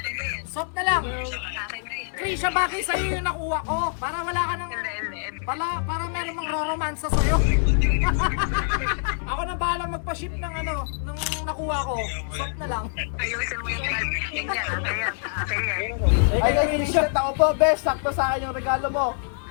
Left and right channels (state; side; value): silent; right; digital silence